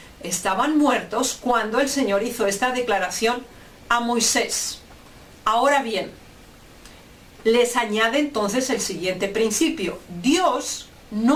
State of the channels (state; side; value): identical; both; correlation 1.00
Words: estaban muertos cuando el Señor hizo esta declaración a Moisés. Ahora bien, les añade entonces el siguiente principio. Dios